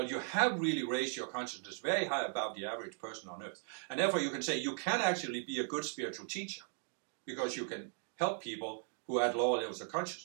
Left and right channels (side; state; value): left; silent; 53 dB below the other